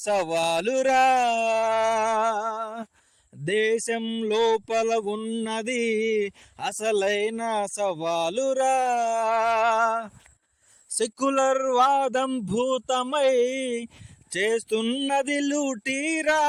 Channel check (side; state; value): both; identical; correlation 1.00